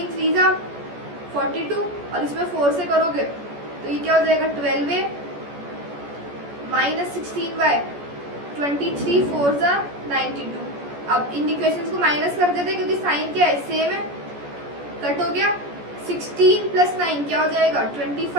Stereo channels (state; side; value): late; left; 14 ms